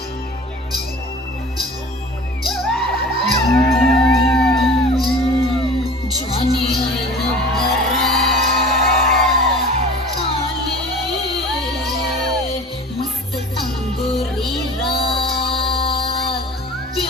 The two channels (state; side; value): normal; both; correlation 0.40